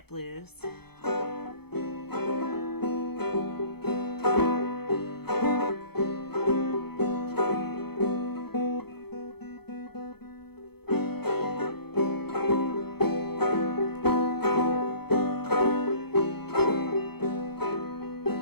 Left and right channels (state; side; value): late; right; 0.96 ms